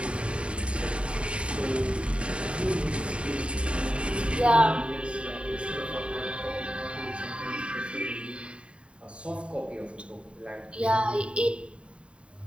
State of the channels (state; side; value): late; left; 0.058 ms